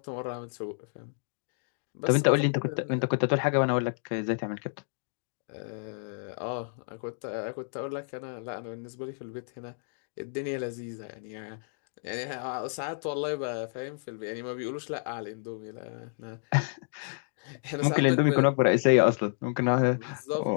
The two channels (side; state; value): right; silent; digital silence